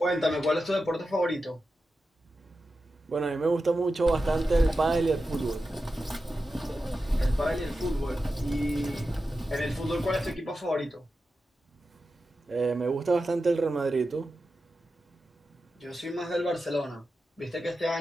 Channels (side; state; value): both; normal; correlation 0.91